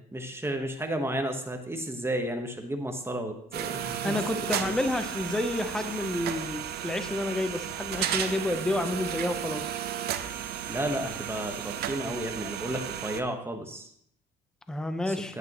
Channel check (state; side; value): normal; both; correlation 0.61